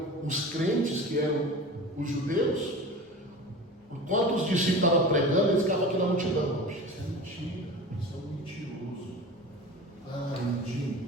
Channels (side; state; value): both; normal; correlation 0.34